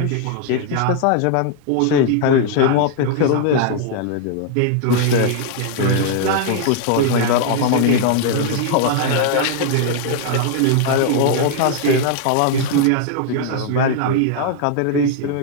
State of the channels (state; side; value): different; both; correlation 0.00